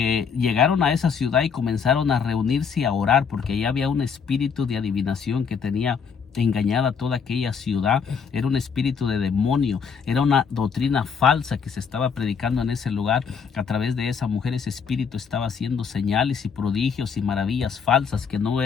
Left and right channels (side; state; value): right; quieter; 6.3 dB